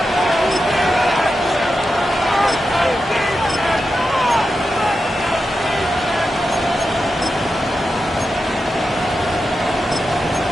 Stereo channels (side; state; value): both; normal; correlation 0.89